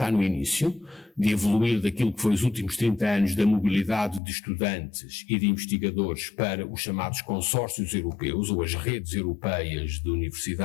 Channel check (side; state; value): right; drops out; at 4.2 s